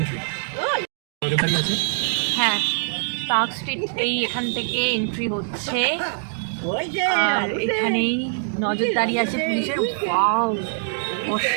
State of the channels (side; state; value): left; silent; digital silence